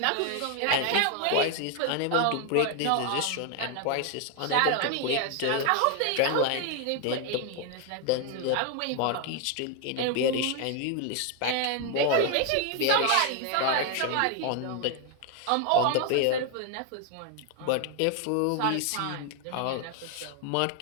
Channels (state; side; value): different; both; correlation 0.01